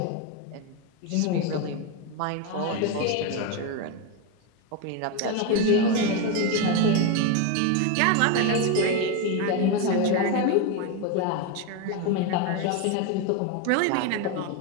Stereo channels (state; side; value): different; both; correlation 0.03